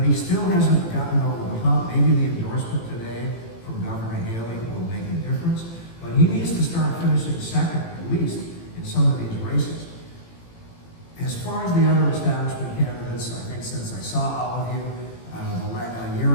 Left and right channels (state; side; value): late; right; 18 ms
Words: he still hasn't gotten over the hump. Maybe the endorsement today from Governor Haley will make a difference, but he needs to start finishing second, at least, in some of these races. As far as the other establishment candidates, I think since I saw all of you a